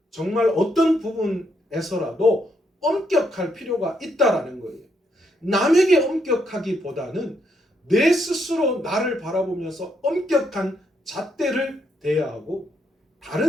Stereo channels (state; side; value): normal; both; correlation 0.76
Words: 정말 어떤 부분에서라도 엄격할 필요가 있다라는 거예요. 남에게 엄격하기보다는 내 스스로 나를 바라보면서 엄격한 잣대를 대야 하고,